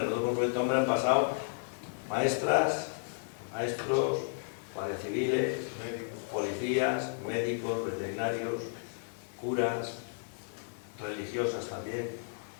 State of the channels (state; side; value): silent; right; 56 dB below the other